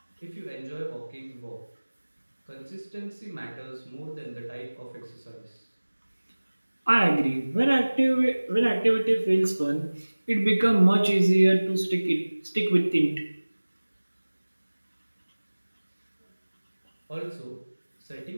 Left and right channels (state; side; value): inverted; both; correlation -1.00